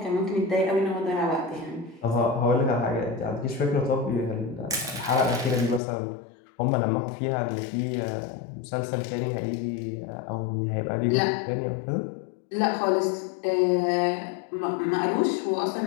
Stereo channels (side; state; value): right; drops out; at 5.8 s